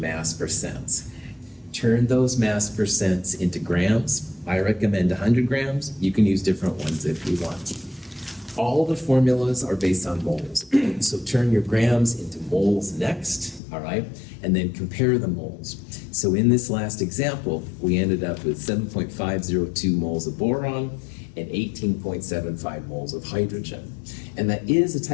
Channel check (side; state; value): right; drops out; at 13.6 s